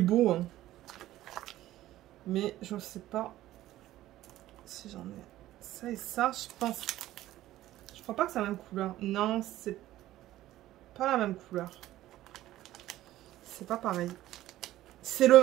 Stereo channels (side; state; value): left; quieter; 14.8 dB